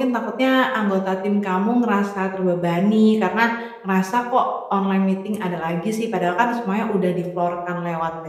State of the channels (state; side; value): identical; both; correlation 1.00